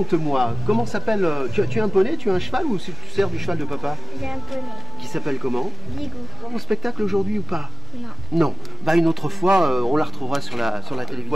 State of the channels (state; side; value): normal; both; correlation 0.95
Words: comment s'appelle, tu as un poney, tu as un cheval ou tu sers du cheval de papa? J'ai un poney. Qui s'appelle comment? Ligou. Au spectacle aujourd'hui ou pas? Non. Non. Bah une autre fois, on la retrouvera sur la télévision.